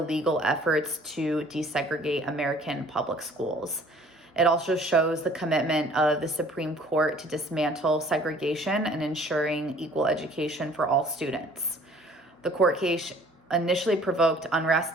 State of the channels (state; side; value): normal; both; correlation 0.53